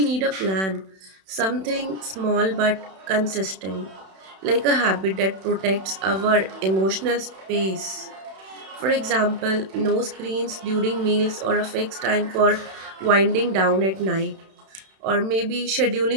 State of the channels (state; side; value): late; left; 31 ms